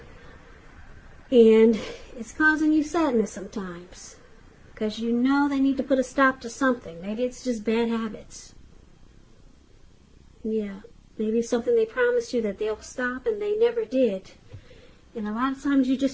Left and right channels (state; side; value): identical; both; correlation 1.00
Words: and it's causing you sadness sometimes, because you know they need to put a stop to something. Maybe it's just bad habits. Yeah, maybe something they promised you that they'll stop and they never did. And a lot of times you